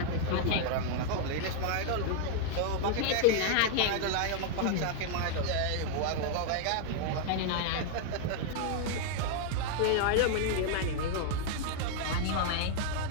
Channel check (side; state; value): both; different; correlation 0.00